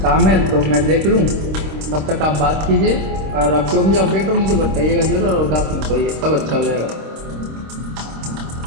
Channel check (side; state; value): left; late; 26 ms